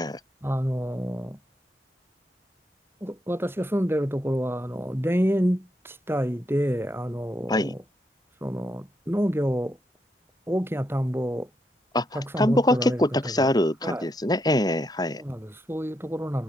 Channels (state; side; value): normal; both; correlation 0.80